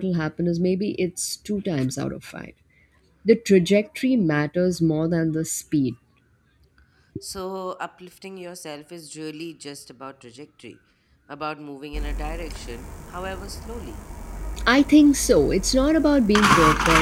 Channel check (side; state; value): both; identical; correlation 1.00